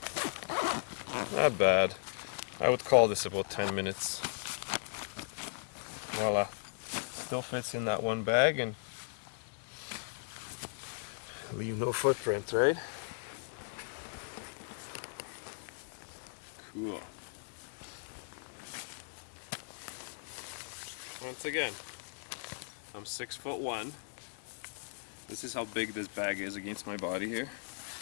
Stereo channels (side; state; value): right; silent; digital silence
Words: Not bad. I would call this about 10 minutes. Voila. Still fits in that one bag and leave no footprint, right? Cool. Once again, I'm 6'1". This is how big this bag is against my body here.